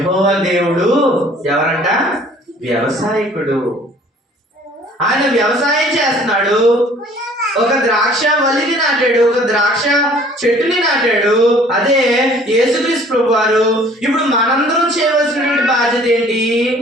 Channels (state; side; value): normal; both; correlation 0.54